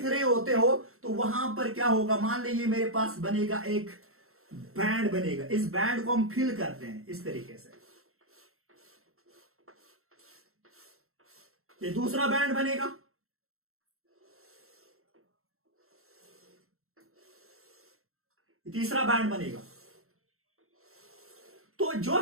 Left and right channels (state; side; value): late; left; 0.62 ms